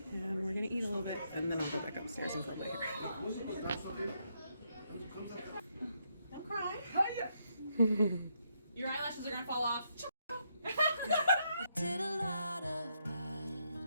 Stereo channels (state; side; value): inverted; both; correlation -0.77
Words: and we're gonna eat a little bit, and then I'll go back upstairs and curl my hair. Don't cry. Your eyelashes are gonna fall off. I did a lot of